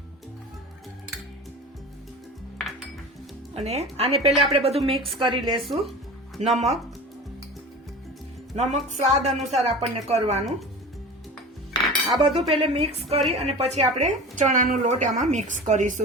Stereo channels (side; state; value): both; normal; correlation 0.34